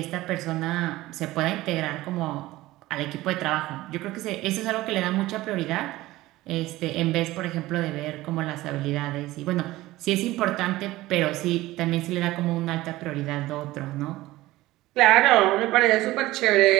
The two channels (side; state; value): left; quieter; 17.6 dB